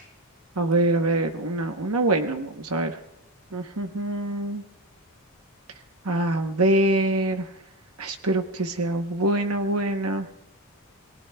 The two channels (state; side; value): normal; both; correlation 0.18